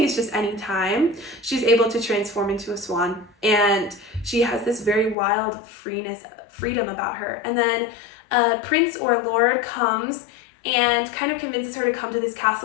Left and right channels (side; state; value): right; drops out; at 5.2 s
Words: it's just any time, she's able to transform into a swan, and she has this very wild freedom about her. And then a prince or a lord comes and kind of convinces her to come to this